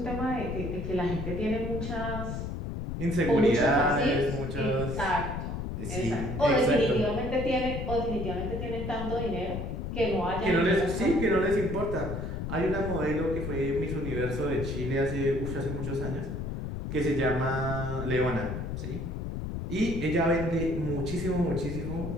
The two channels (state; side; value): noise; left; rumble, 4 dB below the sound